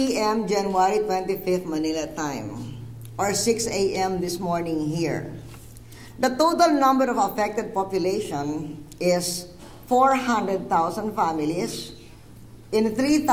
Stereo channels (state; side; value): identical; both; correlation 1.00